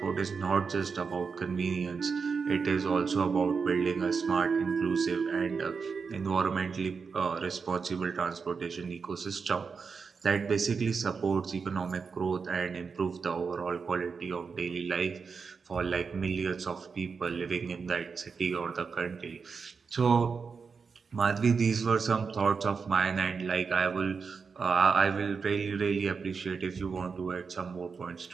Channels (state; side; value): quieter; left; 5.3 dB